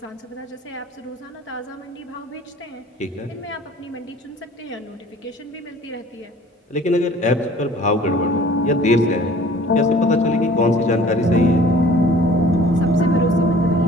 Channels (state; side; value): normal; both; correlation 0.50